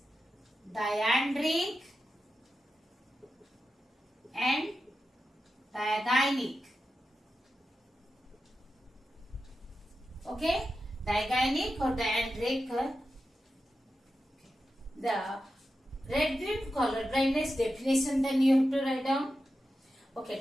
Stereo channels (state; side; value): normal; both; correlation 0.91